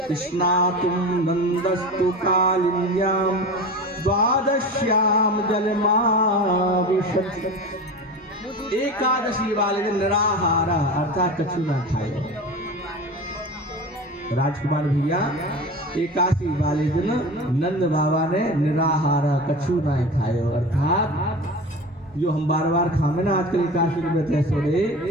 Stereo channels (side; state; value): both; normal; correlation 0.31